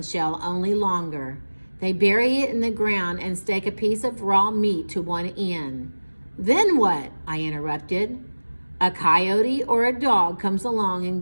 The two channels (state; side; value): inverted; both; correlation -1.00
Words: shell, only longer. They bury it in the ground and stake a piece of raw meat to one end. Then what? I interrupted. A coyote or a dog comes along